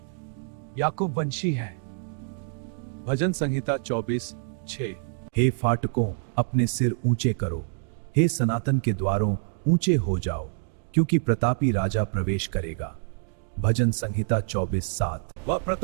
याकूब वंशी हैं। भजन संहिता 24:6। हे फाटकों, अपने सिर ऊंचे करो, हे सनातन के द्वारों ऊंचे हो जाओ, क्योंकि प्रतापी राजा प्रवेश करेगा। भजन संहिता 24:7। वह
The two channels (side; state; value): left; silent; digital silence